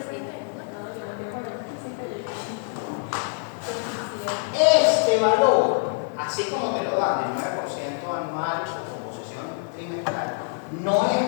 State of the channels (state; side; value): silent; right; 57 dB below the other